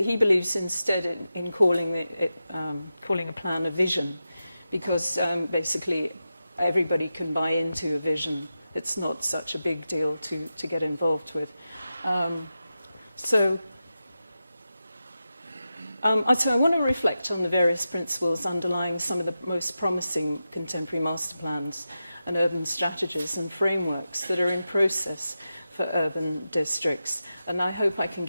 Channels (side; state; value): both; inverted; correlation -0.91